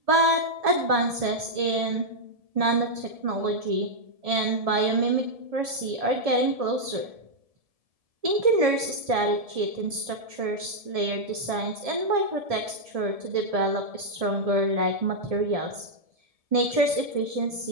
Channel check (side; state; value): left; late; 1.7 ms